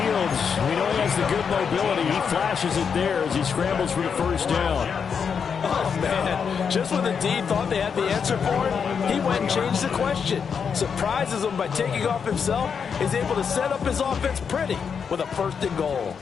we know he has the good mobility. He flashes it there as he scrambles for the 1st down. Oh, man. Just when the D thought they had the answer for it, he went and changed the question. Surprises him by taking off himself. Is able to set up his offense pretty with a 1st and goal.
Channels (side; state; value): right; quieter; 6.5 dB